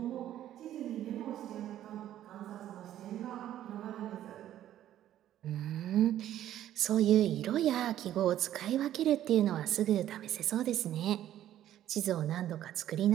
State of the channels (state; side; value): quieter; left; 12.1 dB